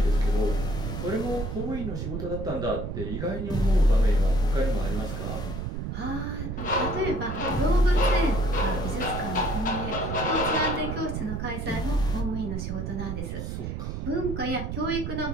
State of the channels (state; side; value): noise; right; rumble, 5 dB below the sound